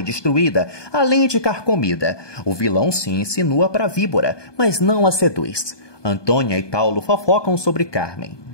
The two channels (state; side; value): late; right; 1.2 ms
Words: destruída, além de carcomida. O vilão se insinua para a víbora, mas não a seduz. Antônia e Paulo fofocam sobre Carmen.